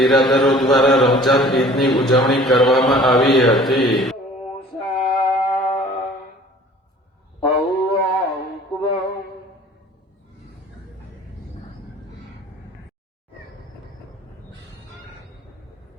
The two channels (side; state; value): both; normal; correlation 0.49